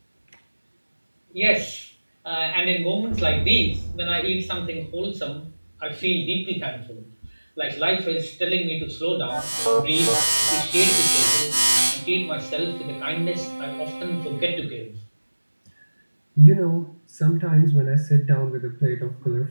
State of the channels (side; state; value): both; inverted; correlation -1.00